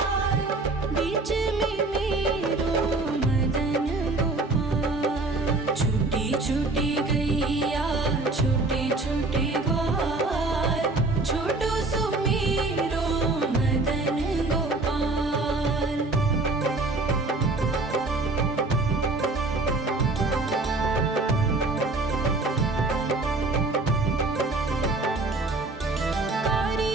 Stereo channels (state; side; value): quieter; left; 3.2 dB